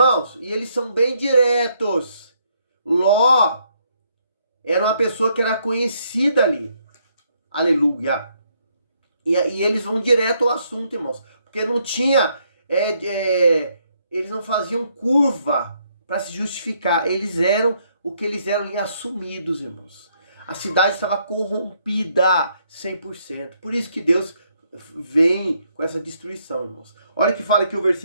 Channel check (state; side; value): inverted; both; correlation -0.72